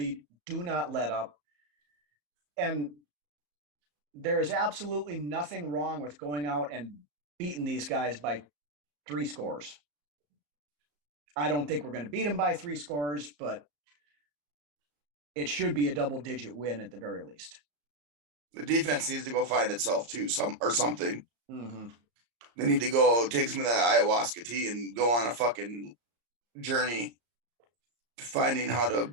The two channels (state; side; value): late; left; 34 ms